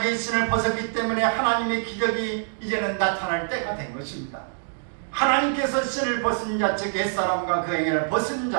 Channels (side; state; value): left; silent; digital silence